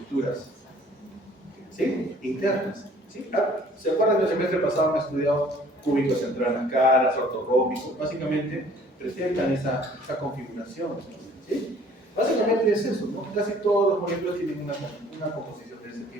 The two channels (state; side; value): normal; both; correlation 0.54